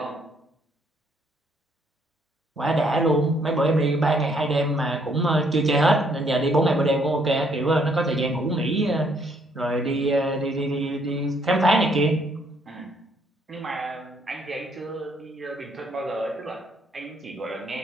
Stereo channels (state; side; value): normal; both; correlation 0.68